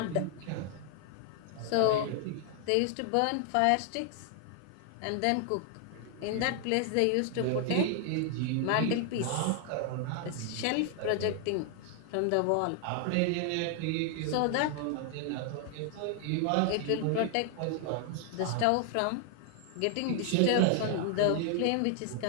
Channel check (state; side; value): different; both; correlation 0.00